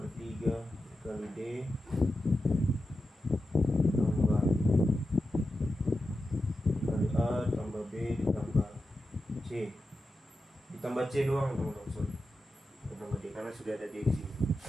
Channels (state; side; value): normal; both; correlation 0.90